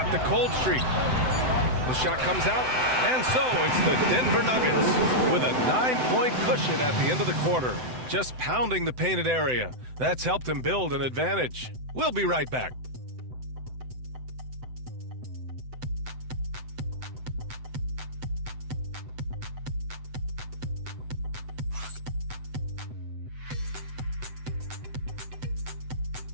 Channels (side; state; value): left; late; 7.9 ms